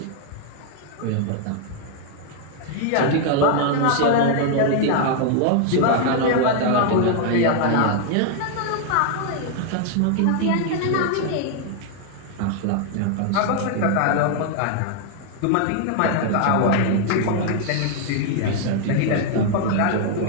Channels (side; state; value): both; different; correlation 0.00